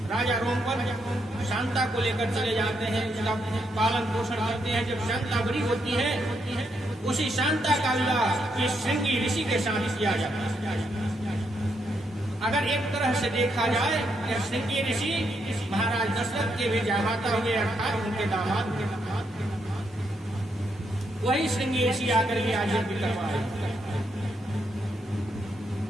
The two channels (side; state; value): both; normal; correlation 0.78